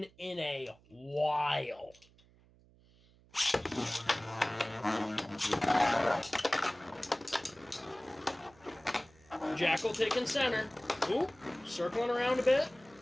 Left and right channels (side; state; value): right; noise; hum, 28 dB below the sound